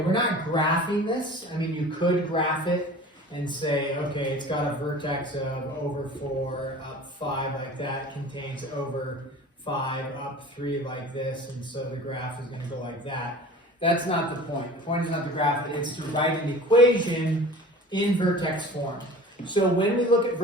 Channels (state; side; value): normal; both; correlation 0.41